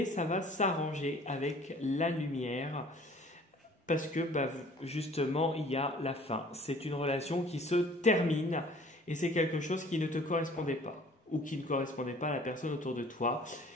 ça va s'arranger avec la lumière parce que justement il y a la fin. C'est une relation qui se termine et c'est quelque chose qui ne te correspondait pas ou qui ne correspondait pas à la personne autour de toi.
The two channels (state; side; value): normal; both; correlation 0.52